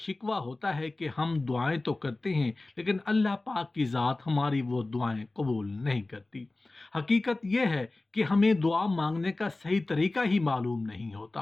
ہوتا ہے کہ ہم دعائیں تو کرتے ہیں لیکن اللہ پاک کی ذات ہماری وہ دعائیں قبول نہیں کرتی۔ حقیقت یہ ہے کہ ہمیں دعا مانگنے کا صحیح طریقہ ہی معلوم نہیں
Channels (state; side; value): quieter; right; 3.0 dB